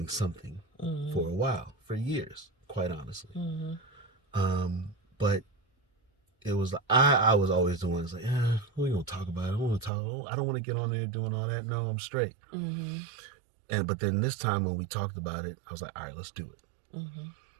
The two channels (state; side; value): drops out; left; at 9.9 s